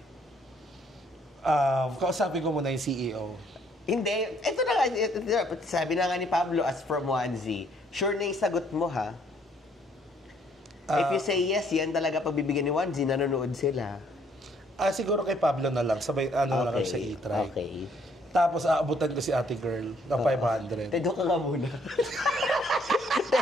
Kausapin ko muna yung CEO. Hindi. Ito na nga. Sabi na nga ni Pablo as from onesie. Sure na yung sagot mo ha? If you say yes, yan talaga pagbibigyan ni onesie, nanonood sila. Siguro kay Pablo na lang. Sabay, ano lang sa e-try. Okay. Tapos, aabutan ko si ate girl na 500. Doon ka nga muna.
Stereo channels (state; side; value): normal; both; correlation 0.65